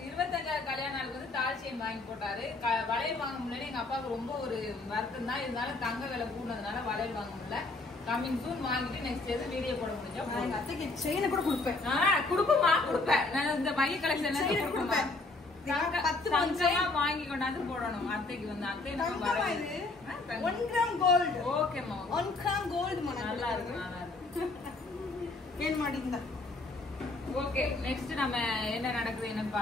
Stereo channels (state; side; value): quieter; right; 3.3 dB